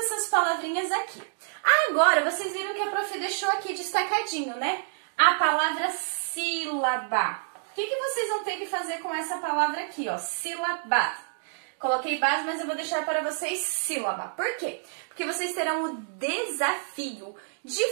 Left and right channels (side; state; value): left; silent; digital silence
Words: palavrinhas aqui. Agora, vocês viram que a prof deixou aqui destacadinho, né? A palavra sílaba. O que vocês vão ter que fazer com essa palavra aqui, ó? Sílaba. Coloquei base, mas eu vou deixar para vocês sílaba. Por quê? Porque vocês terão o desafio de